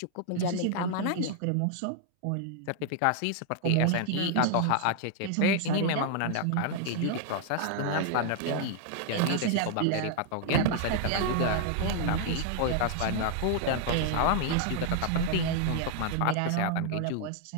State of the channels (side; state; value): both; different; correlation 0.00